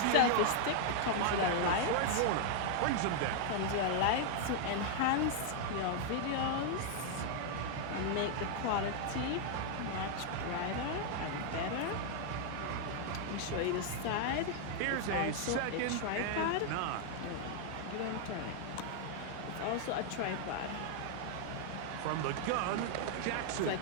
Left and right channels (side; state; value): both; different; correlation 0.00